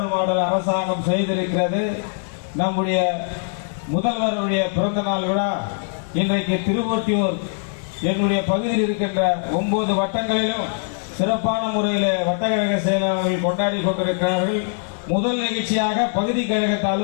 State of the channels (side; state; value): right; silent; digital silence